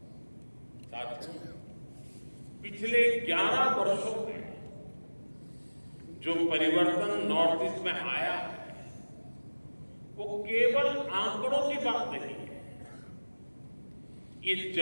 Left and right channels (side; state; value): both; inverted; correlation -1.00